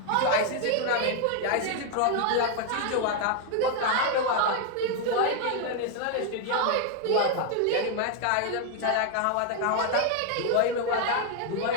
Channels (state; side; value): different; both; correlation 0.01